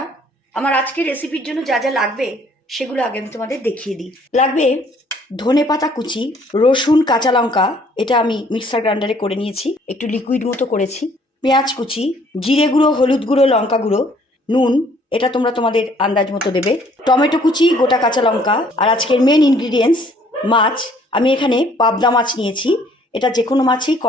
আমার আজকের রেসিপির জন্য যা যা লাগবে সেগুলো আগে আমি তোমাদের দেখিয়ে দিই। লাগবে ধনেপাতা কুচি, রসুন, কাঁচা লঙ্কা, এটা আমি মিক্সার গ্রাইন্ডারে করে নিয়েছি, একটু লিকুইড মতো করেছি, পেঁয়াজ কুচি, জিরে গুঁড়ো, হলুদ গুঁড়ো, লঙ্কা গুঁড়ো, নুন, এটা তোমরা তোমাদের আন্দাজ মতো দেবে, টমেটো কুচি, গোটা কাঁচা লঙ্কা। আর আজকের মেন ইনগ্রিডিয়েন্টস মাছ। আমি এখানে পাবদা মাছ নিয়েছি, এটা যে কোনো মাছই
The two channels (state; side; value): normal; both; correlation 0.61